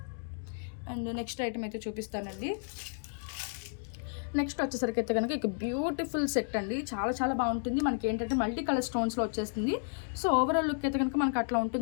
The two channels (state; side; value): silent; right; digital silence